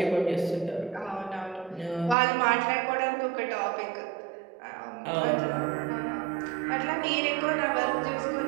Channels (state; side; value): drops out; left; at 2.1 s